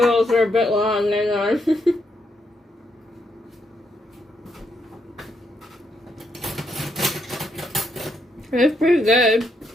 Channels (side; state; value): both; normal; correlation 0.78